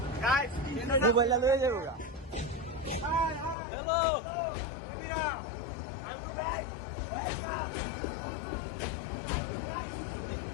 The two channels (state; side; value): drops out; right; at 3.6 s